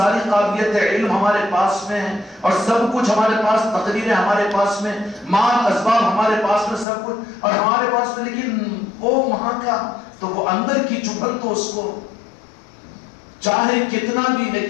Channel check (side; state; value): right; drops out; at 6.9 s